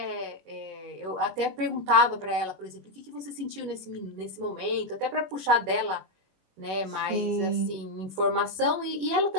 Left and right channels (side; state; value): left; late; 21 ms